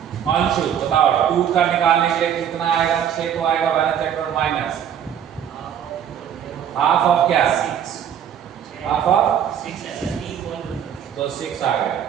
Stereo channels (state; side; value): quieter; left; 9.1 dB